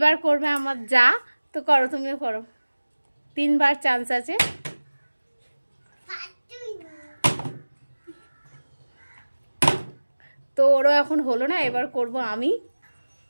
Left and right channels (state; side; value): inverted; both; correlation -1.00